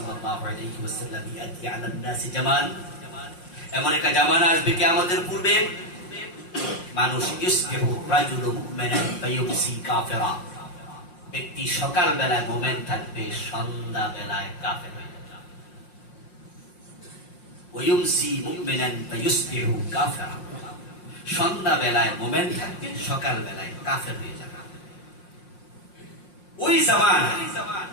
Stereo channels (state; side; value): late; right; 5.6 ms